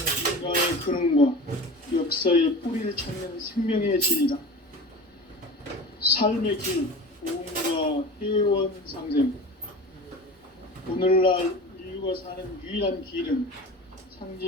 인간의 근원과 역사의 뿌리를 찾는 생명의 진리다. 삶의 길, 보험과 회원 상생. 오늘날 인류가 사는 유일한 길은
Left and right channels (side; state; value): both; normal; correlation 0.34